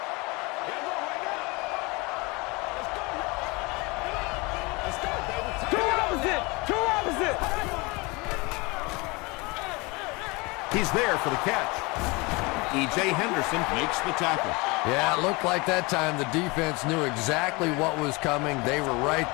Two opposite. He's there for the catch. E.J. Henderson makes the tackle. Yeah, it looked like that time the defense knew exactly what was coming. They were right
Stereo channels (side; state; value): right; quieter; 25.9 dB